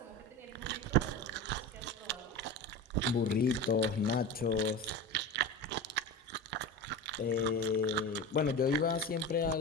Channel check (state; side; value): normal; both; correlation 0.28